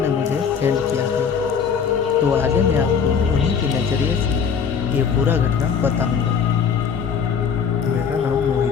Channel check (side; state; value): right; quieter; 6.7 dB